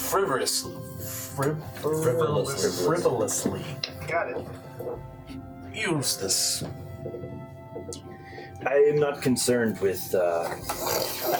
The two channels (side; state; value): both; identical; correlation 1.00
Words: Got it. use this. I am not concerned with I